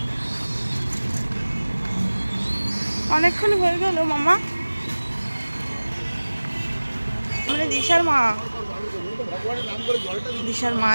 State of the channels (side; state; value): both; inverted; correlation -1.00